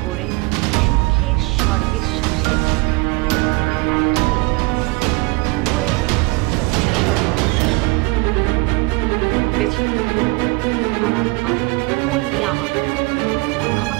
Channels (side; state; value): left; quieter; 26.2 dB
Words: করে সুখের স্বর্গের সংসারে, আর তুমি উপরে যে স্বর্গে বসবাস করো। বুঝেছি? আনান অনলি আমার, ও